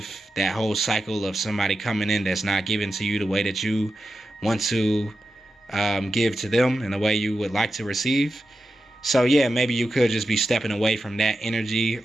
that whole cycle of somebody coming in that's not giving to you the way that you want to give to them and the way you would like to receive. So yeah, maybe you could just be stepping away from that energy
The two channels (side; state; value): both; normal; correlation 0.90